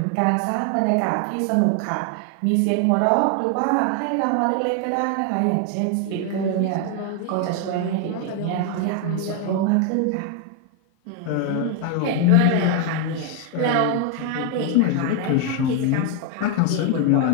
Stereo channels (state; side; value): different; both; correlation 0.01